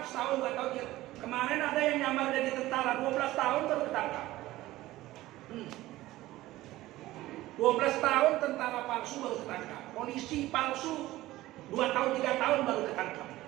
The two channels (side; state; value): left; quieter; 16.8 dB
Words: setahun 2 tahun. Kemarin ada yang nyamar jadi tentara 12 tahun baru ketangkap. 12 tahun tentara palsu baru ketangkap. Polisi palsu 2 tahun 3 tahun baru ketangkap.